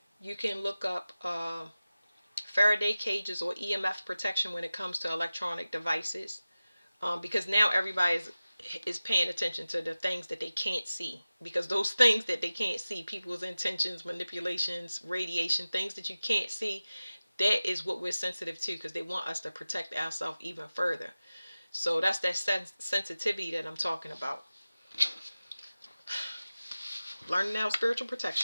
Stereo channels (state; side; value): inverted; both; correlation -0.95